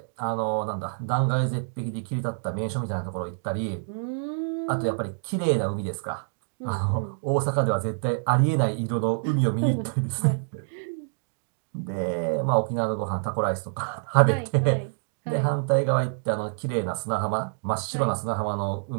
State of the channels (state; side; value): silent; left; digital silence